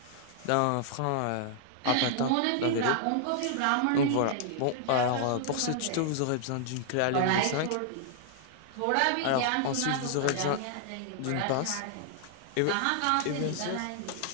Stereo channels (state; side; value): different; both; correlation -0.01